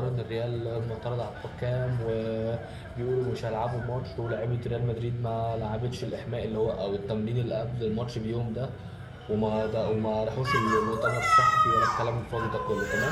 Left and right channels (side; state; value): both; identical; correlation 1.00